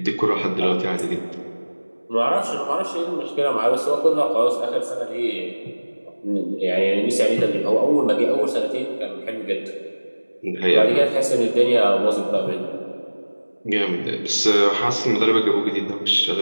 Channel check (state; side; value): inverted; both; correlation -1.00